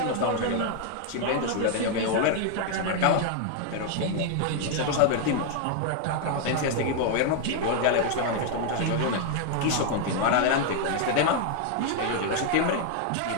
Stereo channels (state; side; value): different; both; correlation 0.00